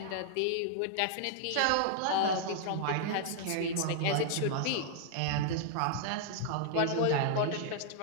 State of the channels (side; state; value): both; different; correlation -0.01